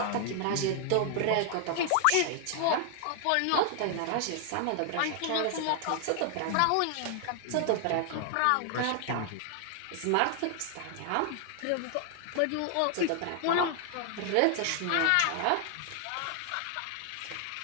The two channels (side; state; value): both; different; correlation 0.00